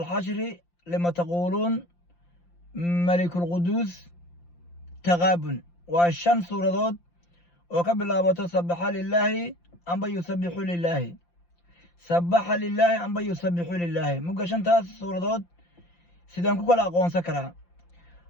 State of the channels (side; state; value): right; late; 5.8 ms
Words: lima taquuluun malikulquduus taqaabun. waa 5 suuradood oo ka bilaabato sabaxa lilaahi amba yusabixu lilaahi, sabaxa lilaahi amba yusabixu lilaahi. mugga 5taas suuradood sidaan ku kala aqoonsan karaa?